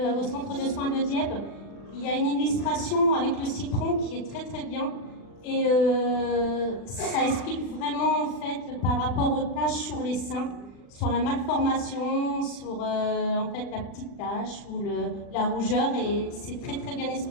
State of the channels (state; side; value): late; right; 40 ms